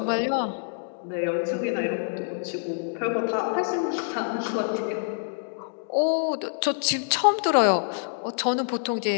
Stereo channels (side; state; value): right; silent; digital silence